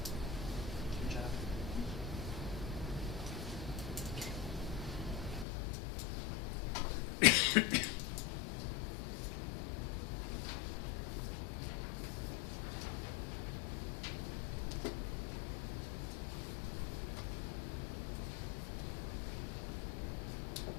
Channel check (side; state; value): right; drops out; at 5.5 s